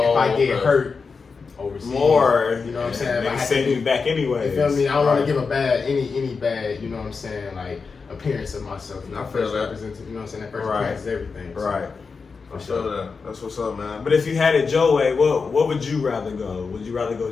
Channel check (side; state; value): right; quieter; 4.9 dB